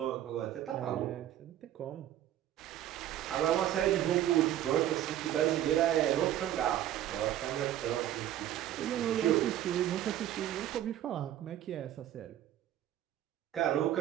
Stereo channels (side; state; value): left; quieter; 12.2 dB